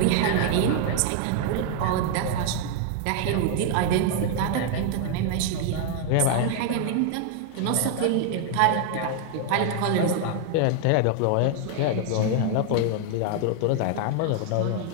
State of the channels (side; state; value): both; different; correlation 0.00